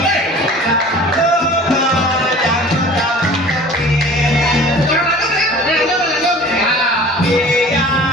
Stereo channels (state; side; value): normal; both; correlation 0.44